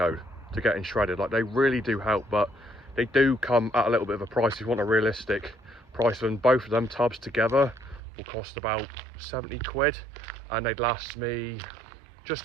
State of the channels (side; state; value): left; drops out; at 8.0 s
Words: to getting shredded. Like, they really do help, but they do come at a little bit of a price. If you want a realistic price, and both of them tubs together will cost about 70 quid, and they'd last me just